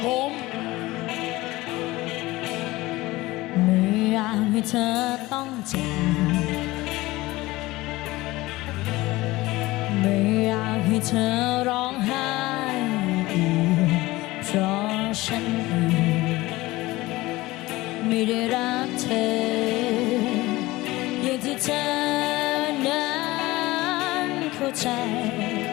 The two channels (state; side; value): quieter; right; 19.4 dB